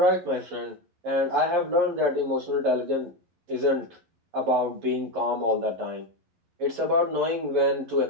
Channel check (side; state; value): left; late; 11 ms